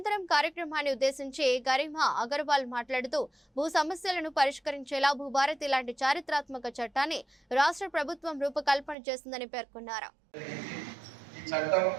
కార్యక్రమాన్ని ఉద్దేశించి గరిమా అగర్వాల్ మాట్లాడుతూ భూ సమస్యలను పరిష్కరించేలా భూభారతి లాంటి చారిత్రాత్మక చట్టాన్ని రాష్ట్ర ప్రభుత్వం రూపకల్పన చేసిందని పేర్కొన్నారు.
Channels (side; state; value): left; drops out; at 9.0 s